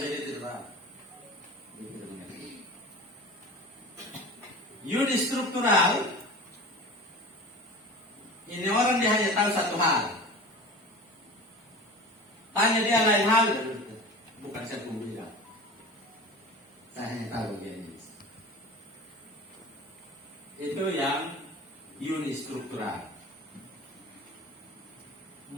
dia tidak tahu. Dia tidak mengerti. Unistruktural, ini orang dia hanya tahu satu hal. Tanya dia lain hal, bukan satu bidang. Saya hanya tahu dia ini. Itu yang unistruktural.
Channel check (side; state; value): both; normal; correlation 0.35